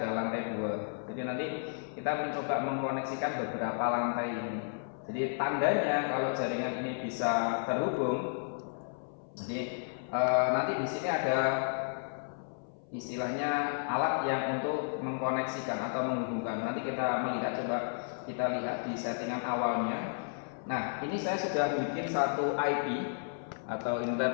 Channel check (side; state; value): right; silent; 56 dB below the other